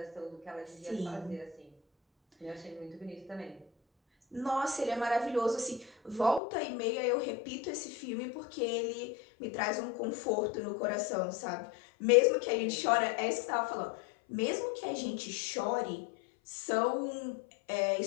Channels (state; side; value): drops out; right; at 6.4 s